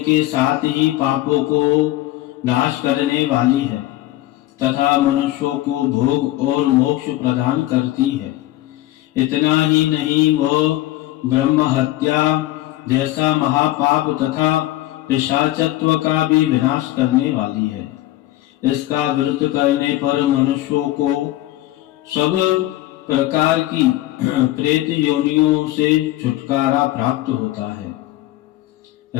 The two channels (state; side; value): quieter; right; 16.0 dB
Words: साथ ही पापों को नाश करने वाली है तथा मनुष्यों को भोग और मोक्ष प्रदान करती है। इतना ही नहीं, वह ब्रह्म हत्या जैसा महापाप तथा पिशाचत्व का भी विनाश करने वाली है। इसका व्रत करने पर मनुष्यों को सब प्रकार की प्रेत योनियों से छुटकारा प्राप्त होता है।